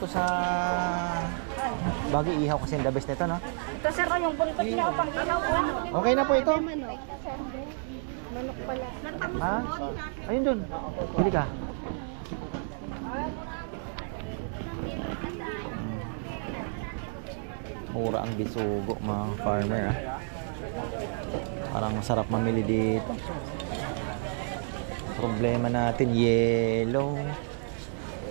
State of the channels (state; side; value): silent; left; 58 dB below the other